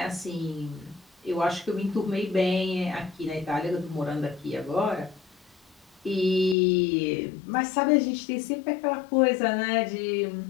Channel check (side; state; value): right; drops out; at 6.6 s